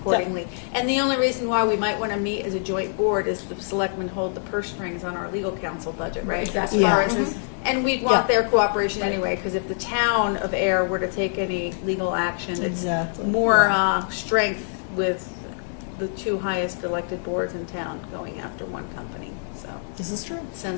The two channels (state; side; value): silent; right; 62 dB below the other